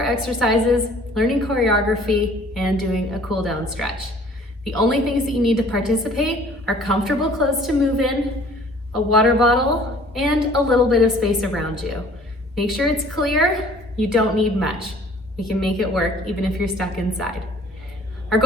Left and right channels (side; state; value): both; normal; correlation 0.53